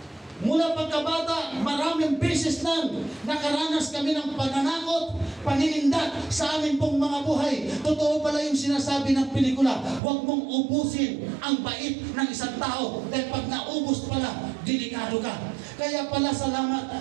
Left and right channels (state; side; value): drops out; left; at 10.0 s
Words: Mula pagkabata, maraming beses nang nakaranas kami ng pananakot, paninindak sa amin pong mga buhay. Totoo pala yung sinasabi ng pelikula, huwag mong ubusin ang bait ng isang tao dahil pag naubos pala, delikado ka. Kaya pala